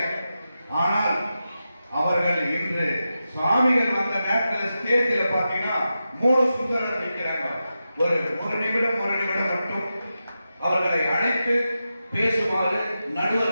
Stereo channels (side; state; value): both; inverted; correlation -0.90